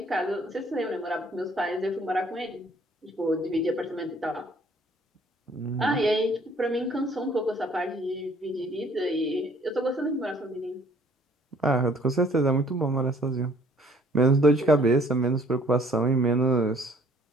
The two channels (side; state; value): both; normal; correlation 0.59